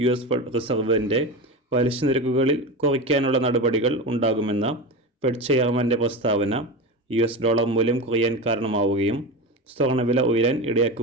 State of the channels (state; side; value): normal; both; correlation 0.23